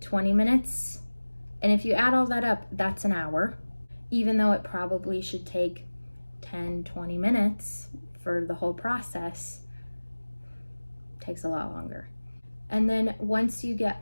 20 minutes. And if you add all that up, that's an hour, even though it probably should take 10, 20 minutes for the whole process. It takes a lot longer. And then once you get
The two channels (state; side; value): inverted; both; correlation -1.00